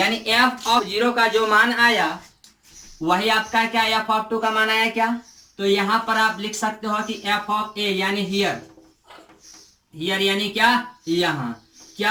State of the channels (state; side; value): identical; both; correlation 1.00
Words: f ऑफ 0 का जो मान आया वही आपका क्या f ऑफ 2 का मान आया क्या। तो यहां पर आप लिख सकते हो कि f ऑफ a यानी हियर यानी क्या यहां